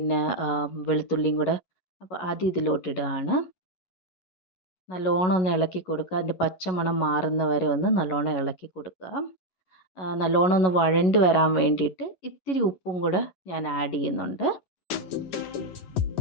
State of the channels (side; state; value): right; late; 11 ms